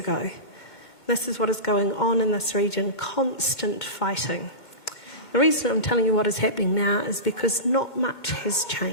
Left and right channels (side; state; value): right; late; 2.1 ms